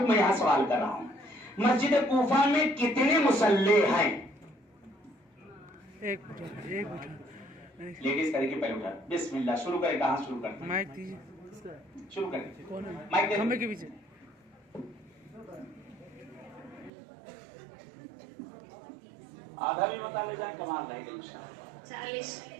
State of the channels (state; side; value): drops out; left; at 16.9 s